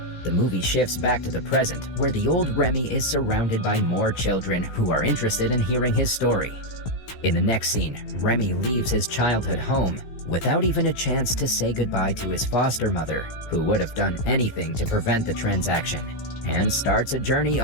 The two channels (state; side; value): late; right; 16 ms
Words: The movie shifts back to the present, where the old Remi is surrounded by more children who are interested in hearing his story. In the next scene, Remi leaves his childhood home without even a chance to say goodbye to his foster mother, who would have done anything to prevent the transaction, and starts a journey